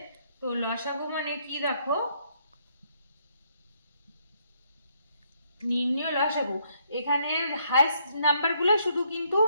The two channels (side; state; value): both; inverted; correlation -0.71